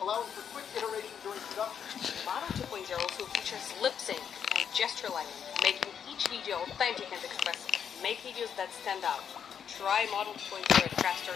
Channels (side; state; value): right; quieter; 7.9 dB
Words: allowing for quick iteration during production. Model 2.0 also features lip sync and gesture lighting, making each video authentic and expressive. Make videos that stand out. Try Model 2.0 at